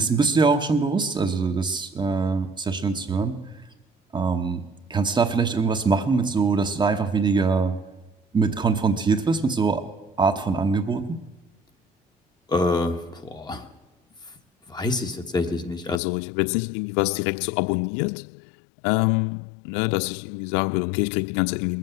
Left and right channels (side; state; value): right; drops out; at 16.0 s